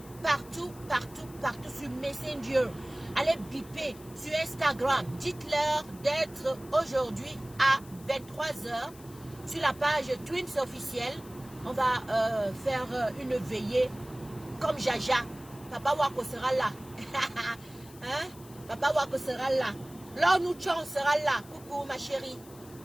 partout sur Messenger. Allez biper sur Instagram. Dites-leur d'être aujourd'hui à 23 h sur la page Twins officielle. On va faire une veillée comme Jaja. Papa Wako sera là. Hein? Papa Wako sera là. L'Onu Chon sera là. Coucou ma chérie.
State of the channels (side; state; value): left; noise; hiss, 21 dB below the sound